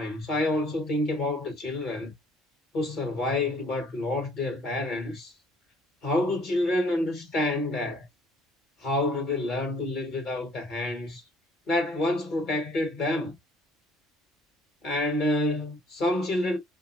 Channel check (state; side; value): normal; both; correlation 0.58